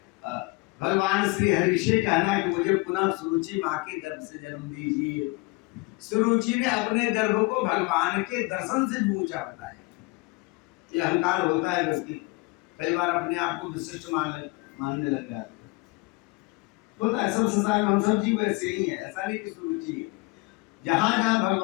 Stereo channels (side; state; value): right; quieter; 24.8 dB